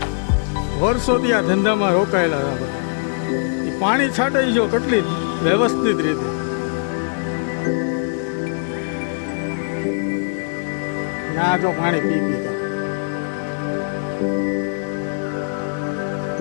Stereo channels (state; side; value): silent; right; digital silence